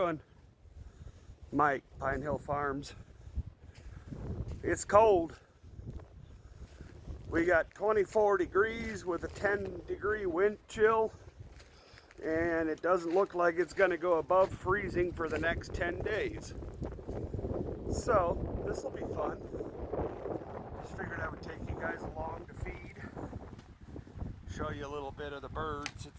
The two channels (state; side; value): identical; both; correlation 1.00